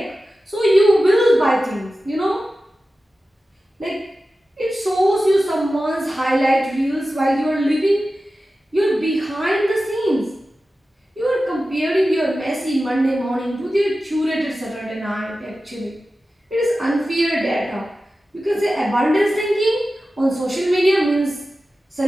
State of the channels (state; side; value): normal; both; correlation 0.94